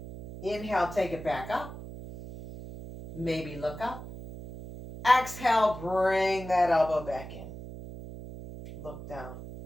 Inhale, take it back up. Maybe look up. Exhale, bring that elbow back in. Look down.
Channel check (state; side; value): noise; right; hum, 12 dB below the sound